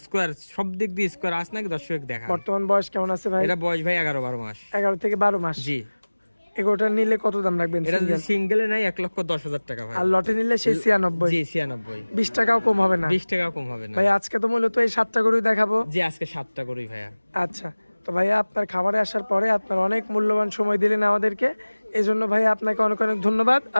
সব দিক দিয়ে স্কোয়ার আস নাকি দর্শক দেখা। বর্তমান বয়স কেমন আছে ভাই? এটা বয়স ভাই 11-12 মাস। 11 থেকে 12 মাস? জি। এগোটা নিলে কত দাম রাখবেন? এটা যদি সিঙ্গেলে নাই 1,10,000 টাকা ভাই। আর লটে নিলে সেই 96? জি 96। 20 টাকাও কম হবে না? 20 টাকাও কম হবে না ভাই। আজকে তো মূলত এই 7টা গরুই দেখাবো। জি আজকে 7টা গরুই ভাইয়া। আচ্ছা, তো ভাইয়া আপনার খামারে আসার পরে আপনার অনেক মূল্যবান সময় দিলেন আমাদেরকে, এই জন্য ভাইয়া আপনাকে অনেক অনেক ধন্যবাদ।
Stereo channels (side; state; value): both; inverted; correlation -1.00